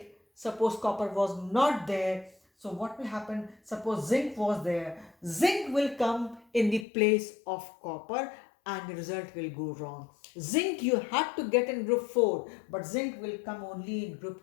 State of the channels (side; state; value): right; drops out; at 6.9 s